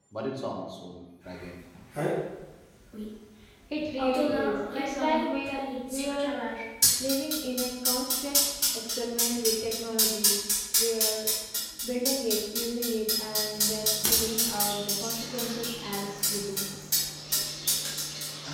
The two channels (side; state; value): both; identical; correlation 1.00